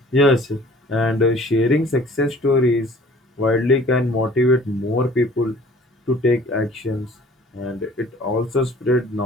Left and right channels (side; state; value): both; normal; correlation 0.51